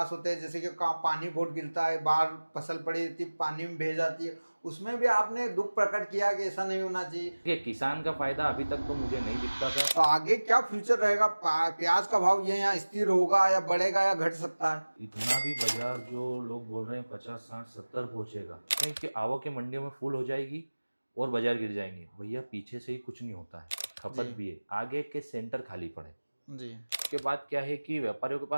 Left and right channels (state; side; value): inverted; both; correlation -1.00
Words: होते हैं, जैसे कि पानी बहुत गिरता है, बाहर फसल पड़ी रहती है, पानी में भेज जाती है, उसमें भी आपने दुख प्रकट किया कि ऐसा नहीं होना चाहिए। देखिए किसान का फायदा अभी तक तो मुझे नहीं दिखता था। तो आगे क्या फ्यूचर रहेगा, प्याज का भाव ये यहाँ स्थिर होगा या बढ़ेगा या घट सकता है? इतना भी बाजार जो लोग बोल रहे हैं 50, 60, 70 पहुंचेगा, क्योंकि आवक मंडियों में फुल हो जाएगी और बाजार गिर जाएंगे, भैया पीछे से ही कुछ नहीं होता है, खपत भी है, आगे के सेंटर खाली पड़े। जी उसके बाद क्या है कि व्यापारियों के